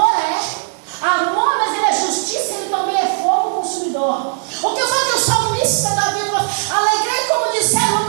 amor, mas ele é justiça, ele também é fogo consumidor. O que eu falo que o salmista da Bíblia, alegrei como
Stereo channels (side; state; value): left; silent; 68 dB below the other